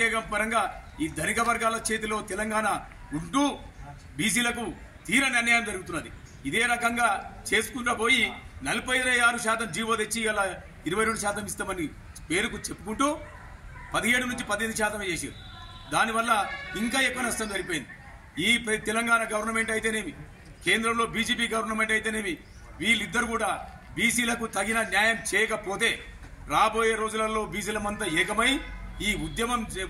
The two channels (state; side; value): identical; both; correlation 1.00